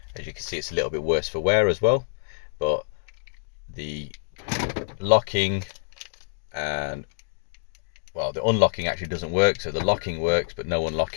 As you can see, it's a little bit worse for wear as well, but the locking and, well, the unlocking actually doesn't work. So the locking works, but no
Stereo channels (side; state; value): right; silent; digital silence